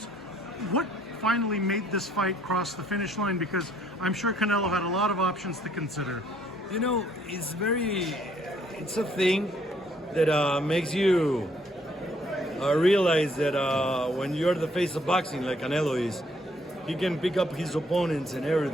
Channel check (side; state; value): both; normal; correlation 0.65